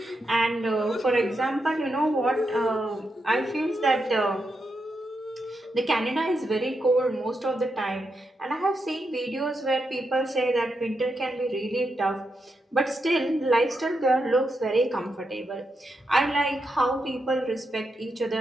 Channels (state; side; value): normal; both; correlation 0.84